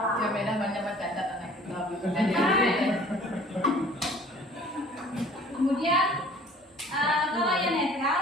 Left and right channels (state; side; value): normal; both; correlation 0.51